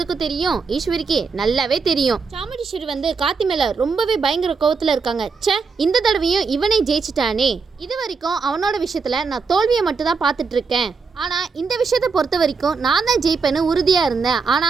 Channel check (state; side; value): quieter; left; 4.9 dB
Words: தெரியும், ஈஸ்வரிக்கு நல்லாவே தெரியும். சாமுண்டீஸ்வரி வந்து கார்த்தி மேல ரொம்பவே பயங்கர கோவத்துல இருக்காங்க. ச்சே, இந்த தடவையும் இவனை ஜெயிச்சிட்டானே. இது வரைக்கும் அவனோட விஷயத்துல நான் தோல்வியை மட்டும் தான் பார்த்துட்டு இருக்கேன். ஆனால் இந்த விஷயத்தை பொறுத்த வரைக்கும் நான் தான் ஜெயிப்பேன்னு உறுதியாக இருந்தேன்.